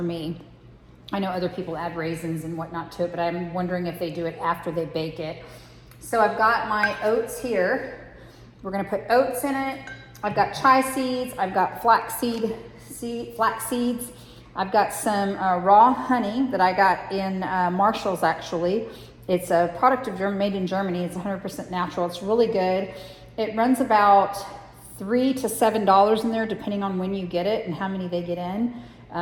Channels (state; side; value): identical; both; correlation 1.00